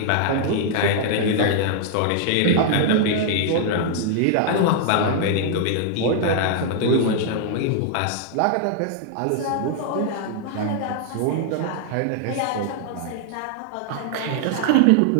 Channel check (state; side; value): different; both; correlation -0.01